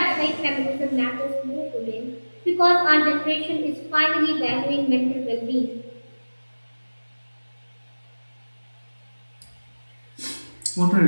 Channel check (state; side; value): inverted; both; correlation -1.00